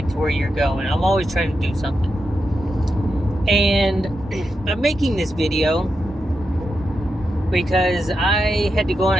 to where you're going. I'm always trying to do something. And I'm making this video because I had to go on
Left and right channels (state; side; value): normal; both; correlation 0.87